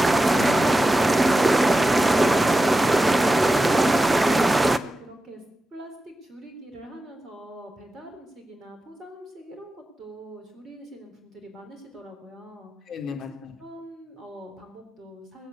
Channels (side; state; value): both; normal; correlation 0.92